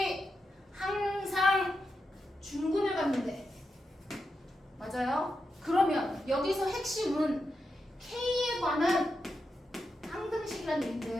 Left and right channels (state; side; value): normal; both; correlation 0.87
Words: 항상 중근을 갖는데 맞아요? 그러면 여기서 핵심은 K에 관한 항등식이라는